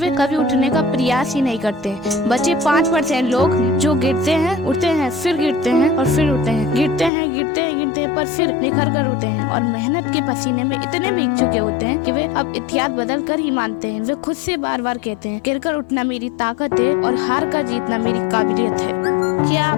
कभी उठने का प्रयास ही नहीं करते। बचे 5% लोग जो गिरते हैं, उठते हैं, फिर गिरते हैं और फिर उठते हैं, गिरते हैं पर फिर निखर कर उठते हैं और मेहनत के पसीने में इतने भीग चुके होते हैं कि वे अब इतिहास बदल कर ही मानते हैं। वे खुद से बार बार कहते हैं, गिरकर उठना मेरी ताकत है और हार कर जीतना मेरी काबिलियत है। क्या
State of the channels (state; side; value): drops out; right; at 7.1 s